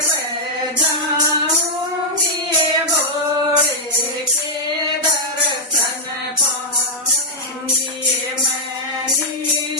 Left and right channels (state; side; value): normal; both; correlation -0.04